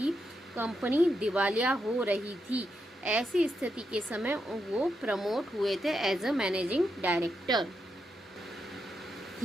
कंपनी दिवालिया हो रही थी। ऐसी स्थिति के समय वो प्रमोट हुए थे as a managing director.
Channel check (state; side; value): normal; both; correlation 0.84